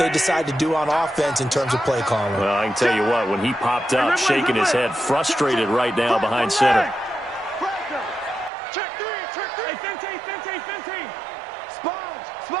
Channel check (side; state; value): left; drops out; at 8.5 s